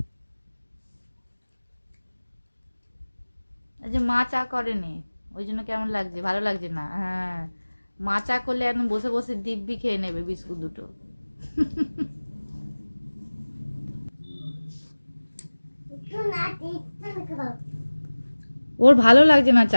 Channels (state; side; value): inverted; both; correlation -1.00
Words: যে মা চা করেনি ওই জন্য কেমন লাগছে, ভালো লাগছে না। হ্যাঁ, মা চা করলে একদম বসে বসে দিব্যি খেয়ে নেবে বিস্কুট দুটো। ওর ভালো লাগছে না